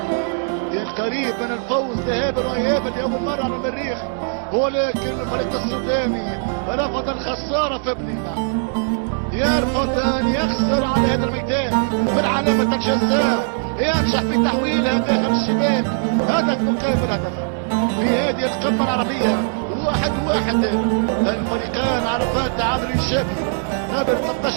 كان قريب من الفوز ذهابا وايابا لاول مرة على المريخ، ولكن الفريق السوداني رفض الخسارة في بنينا، يرفض ان يخسر على هذا الميدان في علامة الجزاء، ينجح في تحويلها داخل الشباك، هدف مقابل هدف في هذه القمة العربية. 1-1. الفريقان عرفان تعادل ايجابي قبل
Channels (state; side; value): silent; left; digital silence